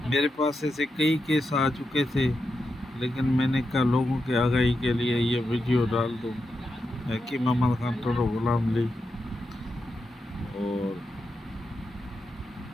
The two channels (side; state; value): both; normal; correlation 0.87